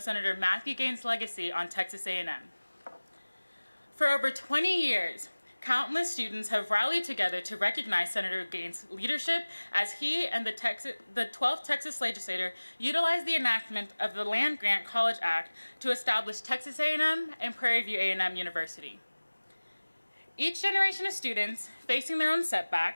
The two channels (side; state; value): both; inverted; correlation -1.00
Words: Senator Matthew Gaines' legacy on Texas A&M. For over 20 years, countless students have rallied together to recognize Senator Gaines' leadership as he and the 12th Texas legislature utilized the enactment of the Land Grant College Act to establish Texas A&M and Prairie View A&M University. Each generation of students, facing their own